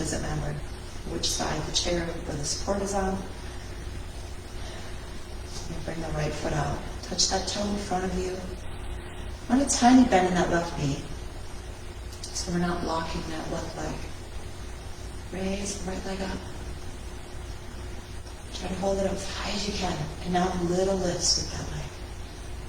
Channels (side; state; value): both; identical; correlation 1.00